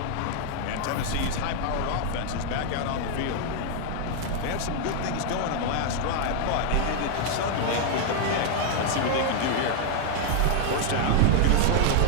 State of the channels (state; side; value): different; both; correlation 0.00